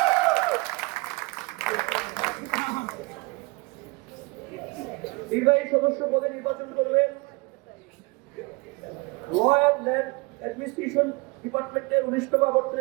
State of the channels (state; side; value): quieter; left; 25.3 dB